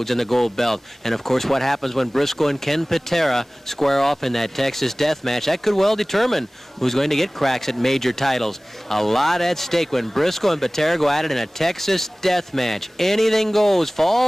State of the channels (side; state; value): both; normal; correlation 0.98